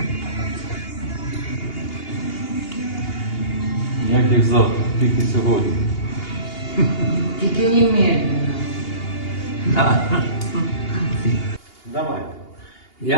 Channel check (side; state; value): right; late; 2.8 ms